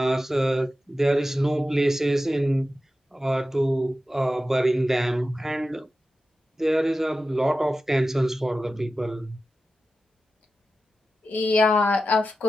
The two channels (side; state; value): both; normal; correlation 0.92